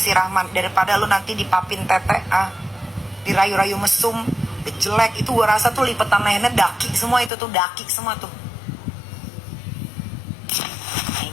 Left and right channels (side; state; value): right; drops out; at 7.3 s